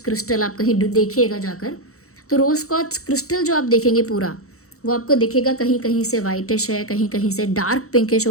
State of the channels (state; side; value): late; right; 0.64 ms